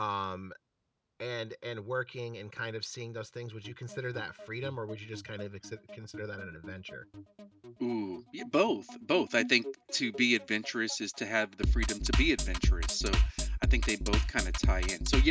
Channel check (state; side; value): identical; both; correlation 1.00